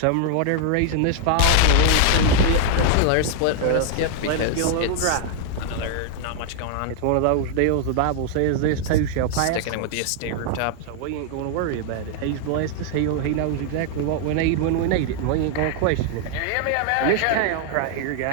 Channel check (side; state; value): both; different; correlation 0.00